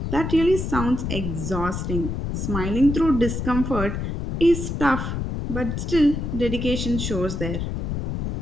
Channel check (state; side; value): noise; left; rumble, 3 dB below the sound